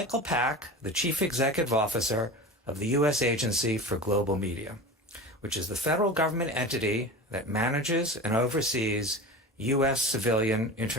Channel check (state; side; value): normal; both; correlation 0.30